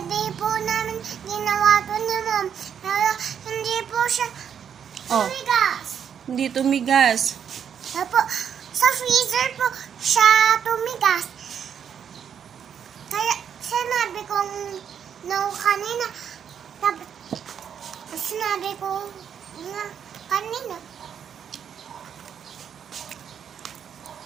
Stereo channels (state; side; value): quieter; left; 8.1 dB